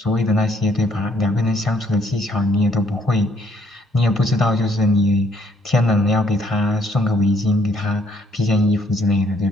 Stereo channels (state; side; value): normal; both; correlation 0.67